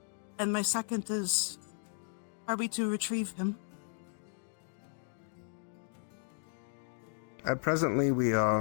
And my second is, are we to retrieve him? Presently, we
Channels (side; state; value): right; silent; digital silence